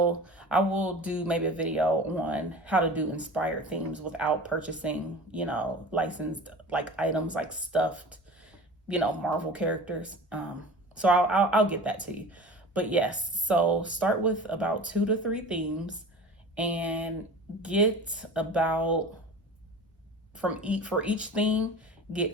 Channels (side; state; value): both; normal; correlation 0.37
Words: do maybe a video on how to do inspired themes without purchasing, licensed like items, like stuffed, Marvel characters. So I'll get that to you. But yes, so start with about two to three themes, and get about for each theme,